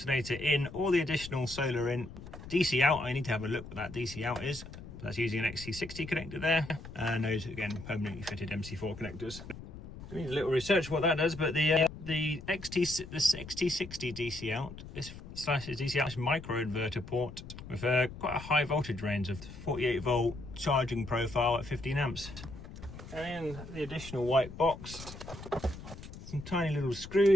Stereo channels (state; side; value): noise; left; rumble, 13 dB below the sound